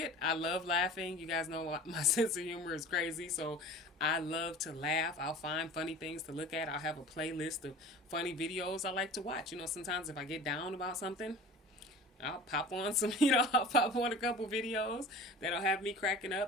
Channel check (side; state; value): both; normal; correlation 0.40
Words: I love laughing. You guys know my sense of humor is crazy, so I love to laugh. I'll find funny things to look at. I'll have a playlist of funny videos I like to watch. Sometimes if I get down about something, I'll pop on I'll pop on a couple videos that'll have me cracking